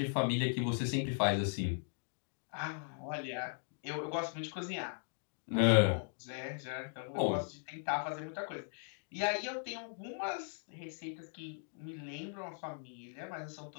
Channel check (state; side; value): silent; right; digital silence